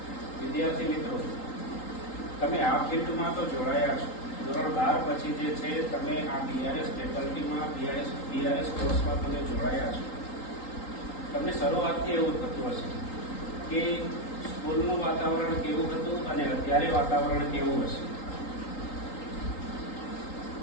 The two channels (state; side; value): late; right; 3.8 ms